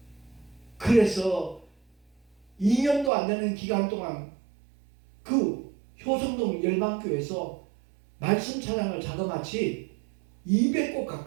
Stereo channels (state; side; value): drops out; left; at 3.1 s